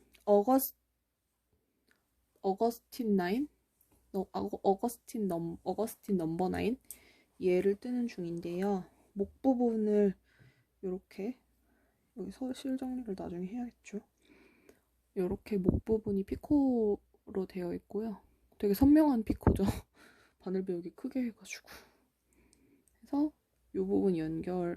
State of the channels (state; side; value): identical; both; correlation 1.00